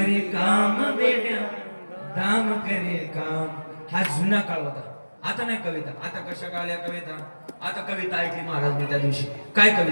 काम वेड्या दाम करे काम. हा जुना काळ होता. आता नाही कविता. आता कशा काळल्या कविता. आता कविता ऐकली महाराज मी त्या दिवशी. काय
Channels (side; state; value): both; inverted; correlation -1.00